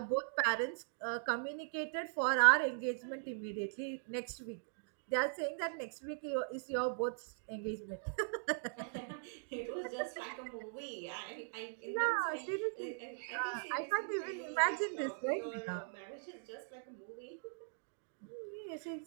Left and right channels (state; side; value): silent; left; digital silence